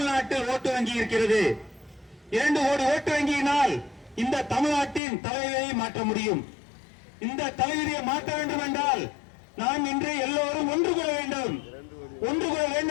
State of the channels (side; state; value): right; drops out; at 5.0 s